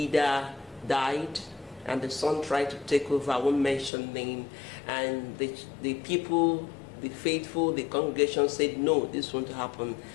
died, and the son tried to take over. I won't mention name, and the people, the faithful, the congregation said no, this won't happen,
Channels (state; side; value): drops out; right; at 3.9 s